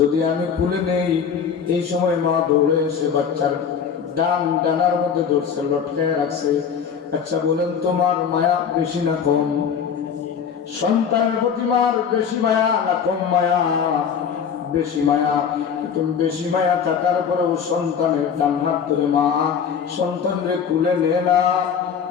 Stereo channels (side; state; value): right; quieter; 7.1 dB